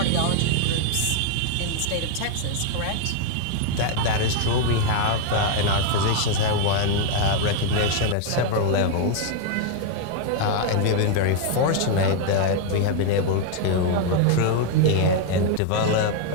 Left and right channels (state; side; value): different; both; correlation 0.01